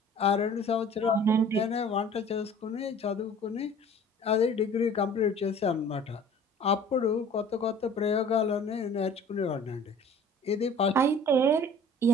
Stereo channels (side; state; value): both; normal; correlation 0.48